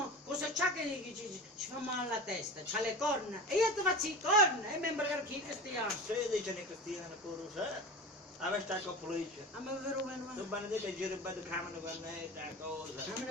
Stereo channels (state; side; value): normal; both; correlation 0.31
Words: cosa c'ha che ci fa male la testa, c'ha le corna e io ti faccio le corna e mi imbra chi cristiano. Se dicono i cristiani pure se avete con polizia. A me vero bene. Tu benedetto giri per il camino con me, da cosa.